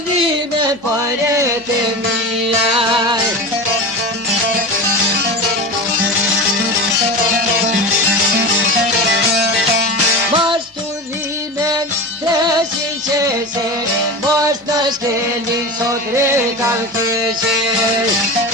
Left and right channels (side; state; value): both; normal; correlation 0.27